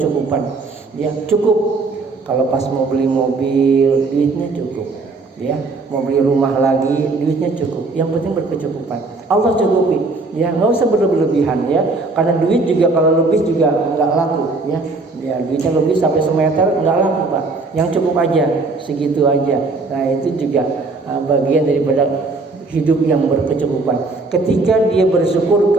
Ya cukup. Kalau pas mau beli mobil, duitnya cukup. Ya mau beli rumah lagi, duitnya cukup. Yang penting berkecukupan. Allah cukupi. Ya nggak usah berlebihan ya. Karena duit juga kalau lebih juga nggak laku. Ya duitnya lebih sampai semeter nggak laku Pak. Yang cukup aja, segitu aja. Nah itu juga bagian daripada hidup yang berkecukupan. Ketika dia bersyukur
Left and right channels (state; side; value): quieter; left; 3.7 dB